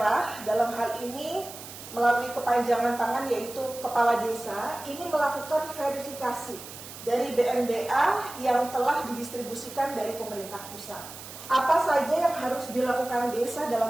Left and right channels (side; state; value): right; noise; hiss, 14 dB below the sound